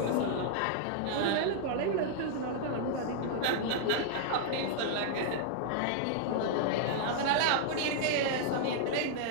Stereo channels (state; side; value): different; both; correlation -0.01